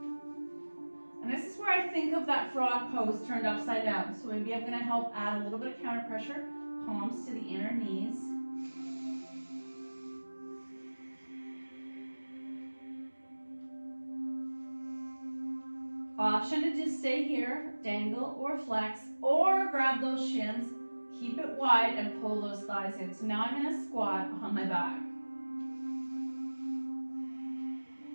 And this is where I think of that frog pose turned upside down. So maybe I'm going to help add a little bit of counter pressure. Palms to the inner knees. Option to just stay here, dangle or flex, or grab those shins, keep it wide and pull those thighs in. So now I'm going to squat on my back.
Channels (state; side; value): inverted; both; correlation -1.00